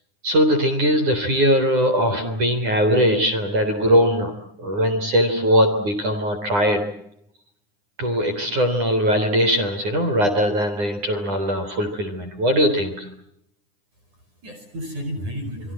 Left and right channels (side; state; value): left; late; 9.8 ms